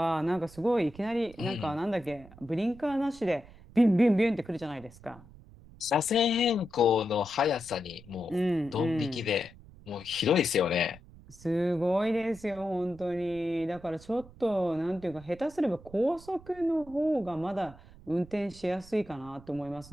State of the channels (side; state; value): right; noise; rumble, 21 dB below the sound